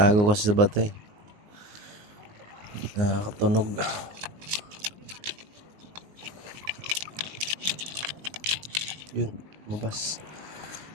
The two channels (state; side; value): late; left; 19 ms